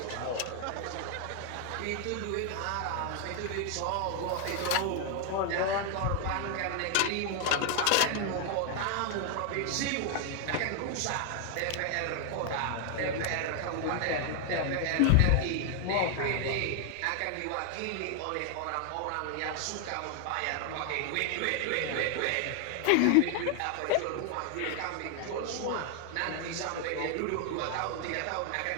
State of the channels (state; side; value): different; both; correlation 0.00